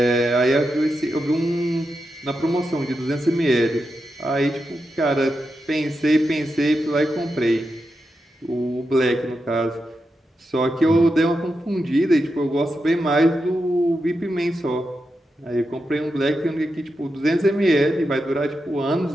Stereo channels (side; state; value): both; normal; correlation 0.88